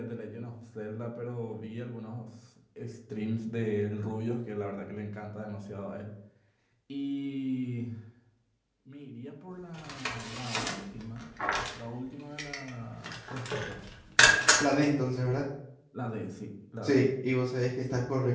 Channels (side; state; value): both; identical; correlation 1.00